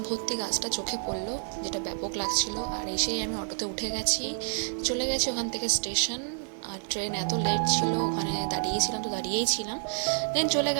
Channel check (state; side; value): silent; left; digital silence